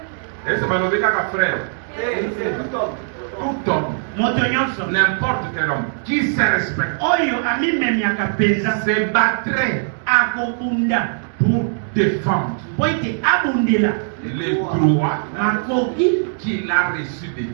Et c'est pas le cas frère. C'est tout homme. Tout homme. Moto nyonso. N'importe quel homme. Qui se respecte. Oyo amimemi akapenza. Se battrait Akokunda. pour défendre Po ete abundela. les droits Makoki. qu'il a reçus de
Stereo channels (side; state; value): left; silent; digital silence